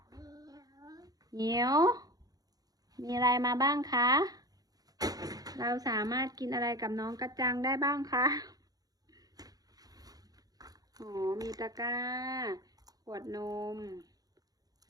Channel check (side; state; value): left; late; 0.18 ms